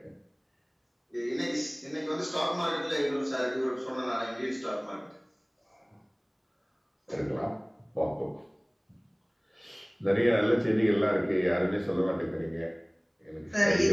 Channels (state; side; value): identical; both; correlation 1.00